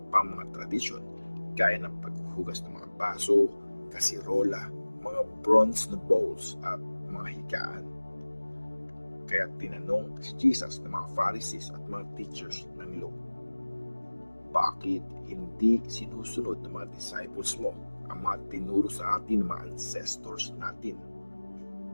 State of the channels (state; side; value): inverted; both; correlation -1.00